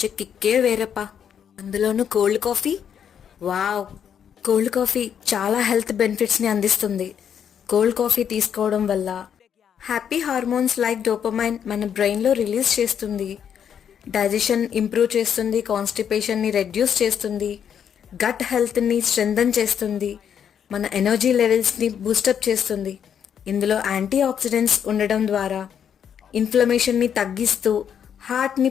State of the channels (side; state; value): right; quieter; 8.4 dB